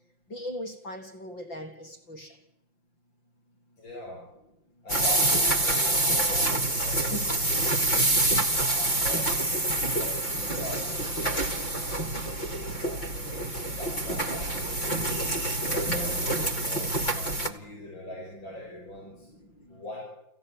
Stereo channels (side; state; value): right; late; 5.8 ms